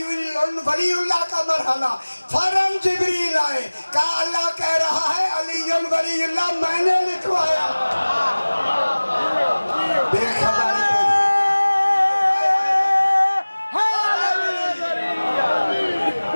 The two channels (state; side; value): inverted; both; correlation -1.00